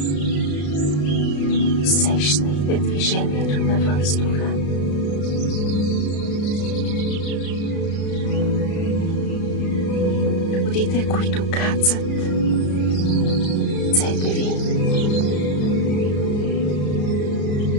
Усещайте движението на въздуха. Водите, които кацат ръцете ви,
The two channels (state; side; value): late; right; 34 ms